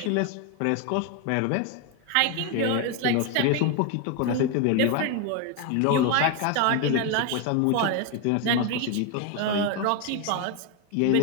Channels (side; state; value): both; different; correlation 0.01